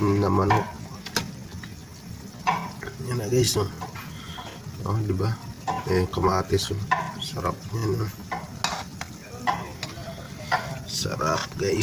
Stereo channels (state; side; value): identical; both; correlation 1.00